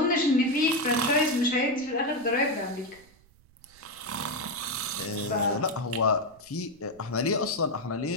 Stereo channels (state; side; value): noise; right; rumble, 28 dB below the sound